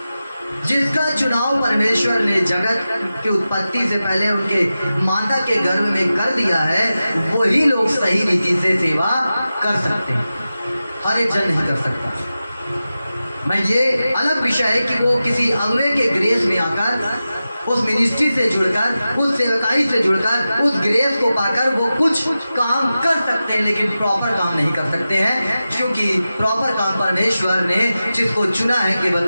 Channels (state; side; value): inverted; both; correlation -0.94